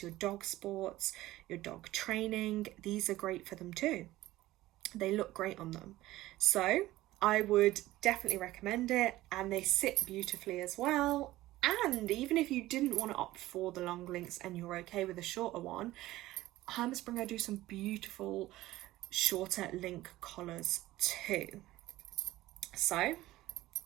your dog sports, your dog training, these are great for them too. They look great on them. So I would definitely recommend it, and they sit beautifully as well. And even if you didn't want to opt for the long links and you're okay with a shorter one, Herm Sprenger do some beautiful shorter link collars too. So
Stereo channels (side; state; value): left; quieter; 16.6 dB